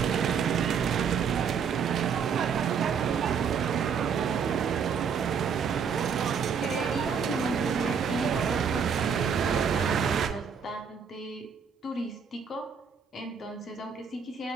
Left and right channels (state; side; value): quieter; left; 6.6 dB